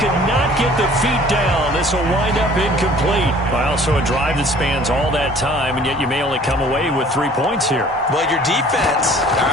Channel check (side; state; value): both; normal; correlation 0.52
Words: not get the feet down. This will wind up incomplete. Well, so a drive that spans all that time, and yet you may only come away with 3 points here. Well, your defense, all